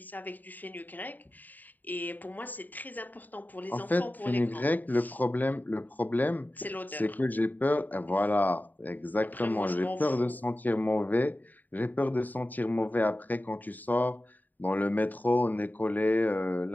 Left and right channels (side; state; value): right; late; 0.086 ms